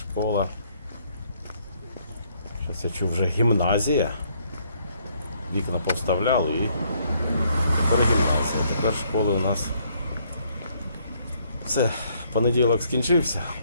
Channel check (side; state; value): both; inverted; correlation -0.68